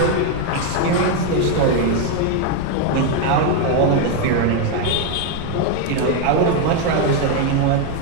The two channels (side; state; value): both; different; correlation 0.01